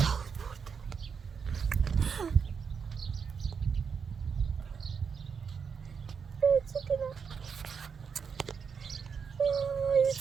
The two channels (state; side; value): quieter; left; 6.3 dB